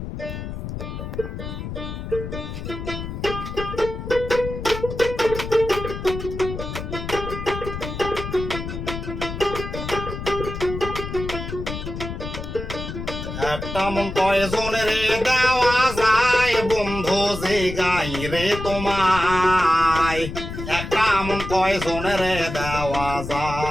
একটা মন কয়জনের দেওয়া যায় বন্ধু যে গাই রে তোমায়, একটা মন কয়জনের দেওয়া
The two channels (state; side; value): noise; left; rumble, 7 dB below the sound